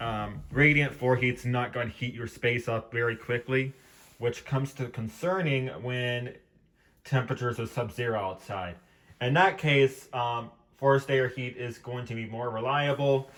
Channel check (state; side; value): identical; both; correlation 1.00